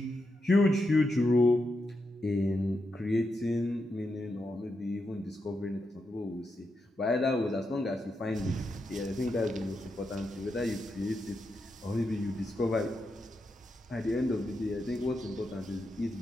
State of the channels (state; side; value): normal; both; correlation 0.85